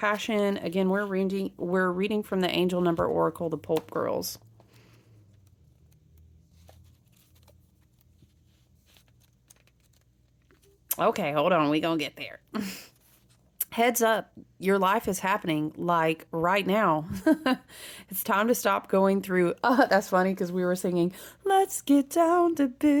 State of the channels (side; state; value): both; identical; correlation 1.00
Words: Again, we're reading from the Angel Number Oracle, the Pulp Girls. Okay, hold on. We gonna get there. Heads up, your life is happening like right now. It's time to stop going through. That's funny because we were singing, let's get down to